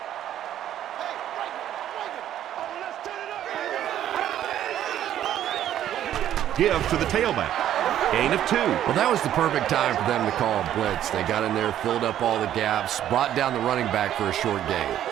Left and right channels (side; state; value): left; quieter; 11.4 dB